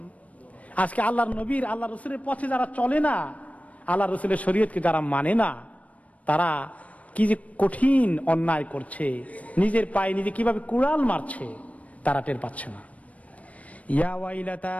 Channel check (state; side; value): late; right; 0.067 ms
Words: আজকে আল্লাহর নবীর, আল্লাহ রসুলের পথে যারা চলে না, আল্লাহ রসুলের শরীয়তকে যারা মানে না, তারা কি যে কঠিন অন্যায় করছে, নিজের পায়ে নিজে কিভাবে কুড়াল মারছে তারা টের পাচ্ছে না।